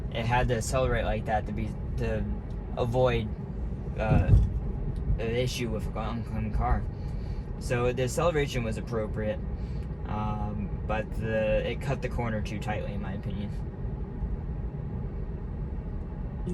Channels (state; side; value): identical; both; correlation 1.00